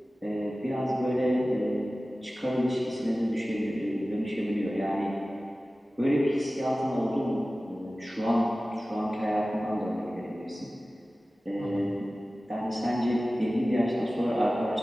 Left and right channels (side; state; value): both; normal; correlation 0.96